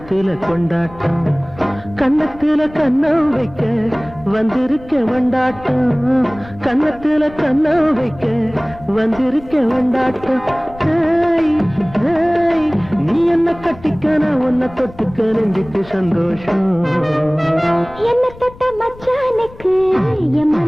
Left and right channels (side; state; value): left; noise; rumble, 19 dB below the sound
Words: கொண்டாட்டம் கன்னத்துல கண்ணம் வைக்க வந்திருக்க வண்டாட்டம் கன்னத்துல கண்ணம் வைக்க வந்திருக்க வண்டாட்டம் ஹேய், ஹேய், நீ என்ன கட்டிக்க நான் உன்னை தொட்டுக்க நெஞ்சுக்கு சந்தோஷம் என்ன தொட்ட மச்சானுக்கு என்